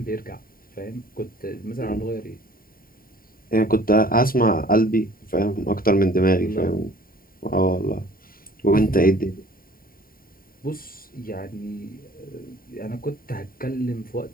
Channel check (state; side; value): late; right; 0.42 ms